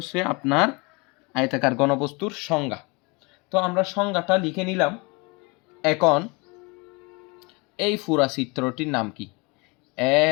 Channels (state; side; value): quieter; right; 28.1 dB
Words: আপনার আয়তাকার ঘনবস্তুর সংজ্ঞা। তো আমরা সংজ্ঞাটা লিখে নিলাম। এখন এই পুরা চিত্রটির নাম কি? A